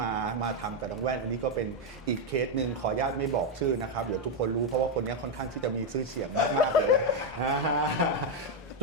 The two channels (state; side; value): normal; both; correlation 0.03